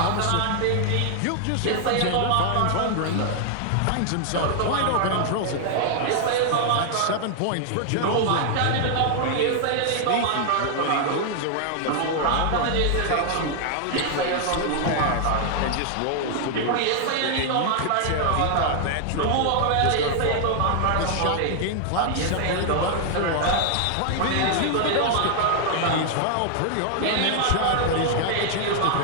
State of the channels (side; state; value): both; different; correlation 0.00